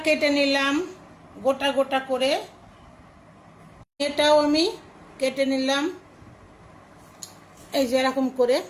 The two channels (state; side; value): identical; both; correlation 1.00